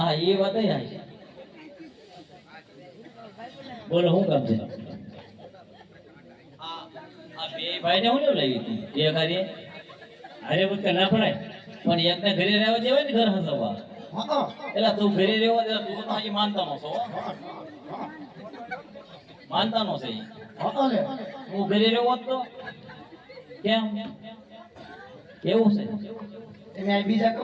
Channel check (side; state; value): both; identical; correlation 1.00